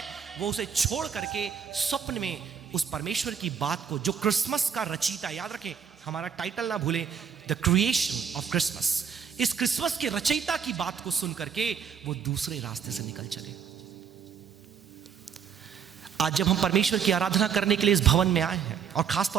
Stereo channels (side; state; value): left; quieter; 7.3 dB